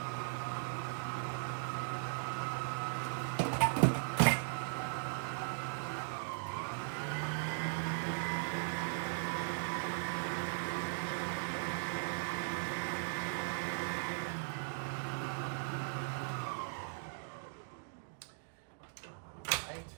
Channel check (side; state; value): left; silent; digital silence